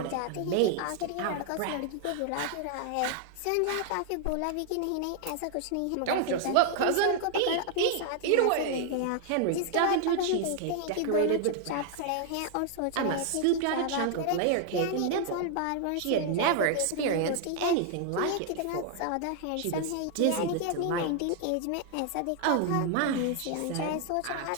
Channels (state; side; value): different; both; correlation 0.00